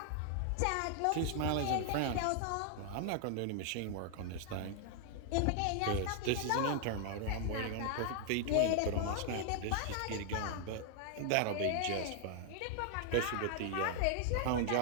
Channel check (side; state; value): both; different; correlation 0.00